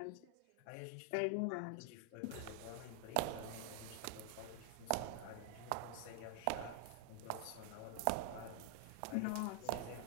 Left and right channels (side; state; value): both; different; correlation 0.00